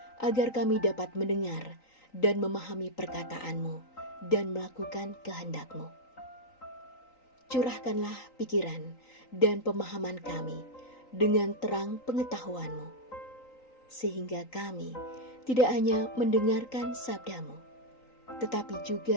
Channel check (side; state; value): right; late; 3.9 ms